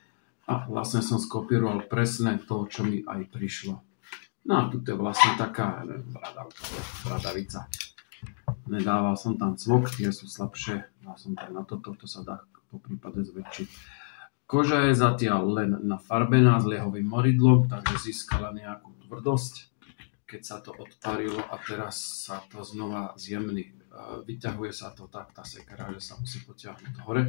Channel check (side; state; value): right; silent; digital silence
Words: A vlastne som skopíroval presne to, čo mi aj prišlo. No a tu je vlastne taká bradavica. Nedával som tam cvok, tie sú slabšie, dal som tam na toto, to sa dá po prípade zväčšiť. Koža je zatiaľ len nafarbená s liehovým moridlom, takže získala nejakú tvrdosť. Keď sa to odparilo a teraz sa to znova zjemní. Vyťahuje sa to tak, tá sekera, že sa musí potiahnuť